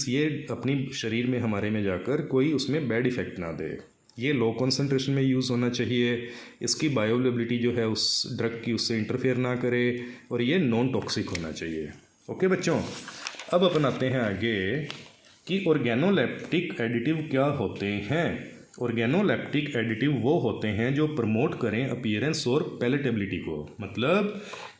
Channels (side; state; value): both; identical; correlation 1.00